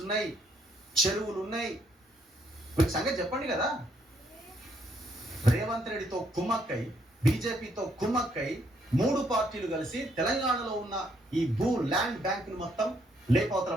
ఉన్నాయి, చెరువులు ఉన్నాయి. మీకు సంగతి చెప్పండి కదా. రేవంత్ రెడ్డితో కుమ్మక్కై, బీజేపీతో కుమ్మక్కై 3 పార్టీలు కలిసి తెలంగాణలో ఉన్న ఈ ల్యాండ్ బ్యాంక్ ను మొత్తం లేపవతల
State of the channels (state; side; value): normal; both; correlation 0.71